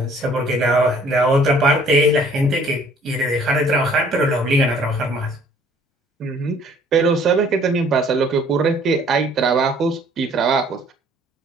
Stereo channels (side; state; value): both; normal; correlation 0.57